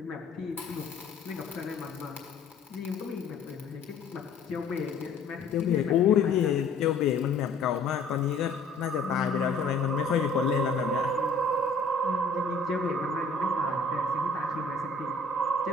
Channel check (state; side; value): quieter; right; 3.4 dB